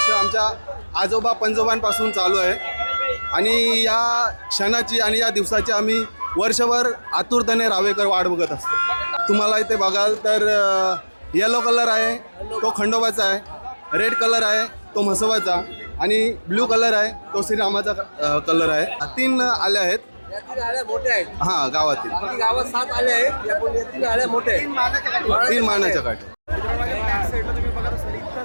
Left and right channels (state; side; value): inverted; both; correlation -1.00